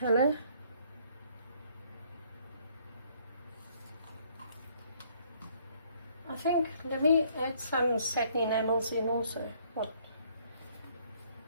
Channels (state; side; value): inverted; both; correlation -0.64